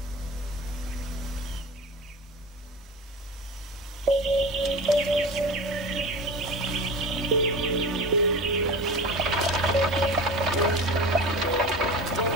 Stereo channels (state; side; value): normal; both; correlation 0.32